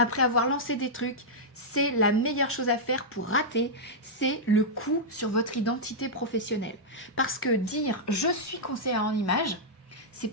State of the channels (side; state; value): both; normal; correlation -0.08